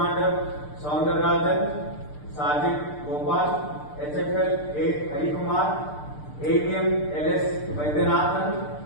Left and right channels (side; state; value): right; late; 6.7 ms